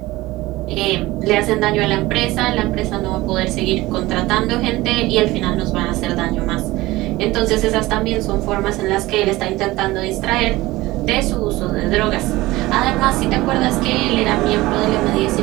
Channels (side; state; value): left; quieter; 18.9 dB